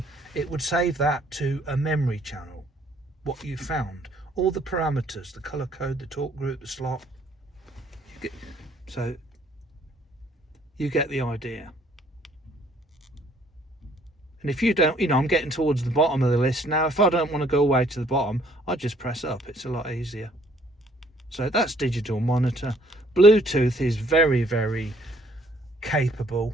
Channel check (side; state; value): both; normal; correlation 0.62